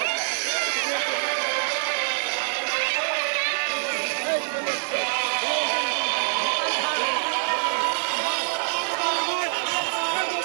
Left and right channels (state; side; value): silent; left; digital silence